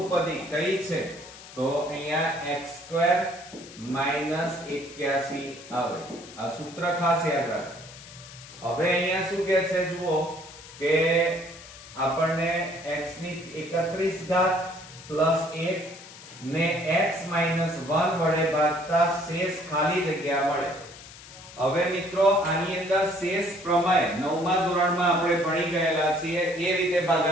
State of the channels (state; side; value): noise; left; hiss, 17 dB below the sound